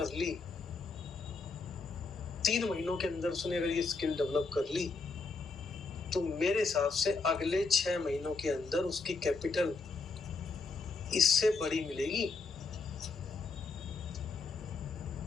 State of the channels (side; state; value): right; quieter; 4.1 dB